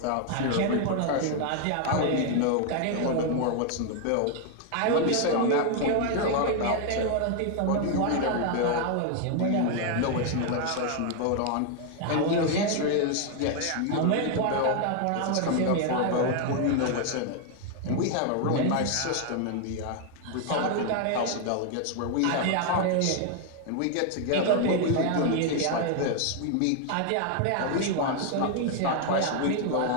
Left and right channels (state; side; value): different; both; correlation 0.00